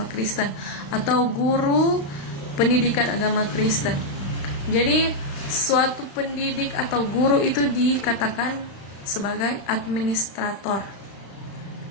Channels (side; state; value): right; late; 36 ms